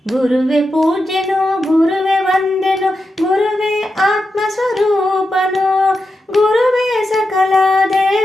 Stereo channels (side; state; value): both; normal; correlation 0.88